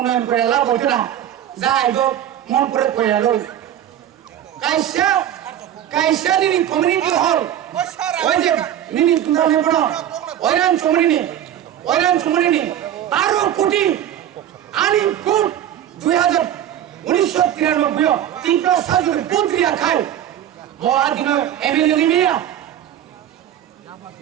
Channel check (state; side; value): quieter; left; 11.0 dB